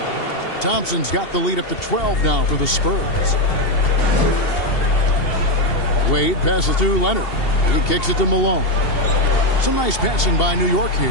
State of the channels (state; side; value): late; right; 2.7 ms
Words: Thompson's got the lead up to 12 now for the Spurs. Wade passes to Leonard. He kicks it to Malone. Some nice passing by New York